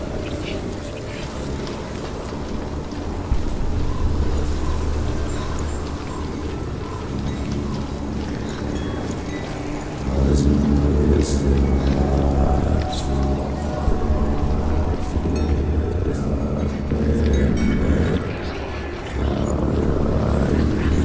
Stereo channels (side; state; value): both; identical; correlation 1.00